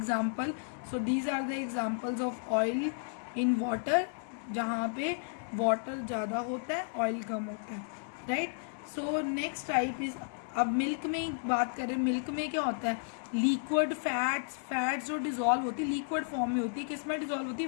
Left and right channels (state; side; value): silent; right; 56 dB below the other